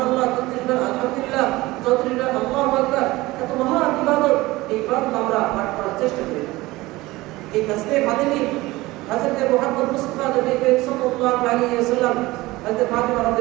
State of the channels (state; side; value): quieter; left; 19.7 dB